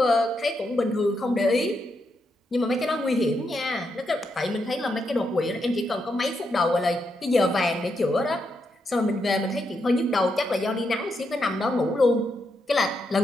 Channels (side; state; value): both; normal; correlation 0.81